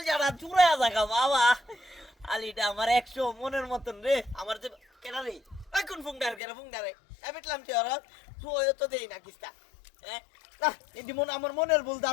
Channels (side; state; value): right; drops out; at 6.4 s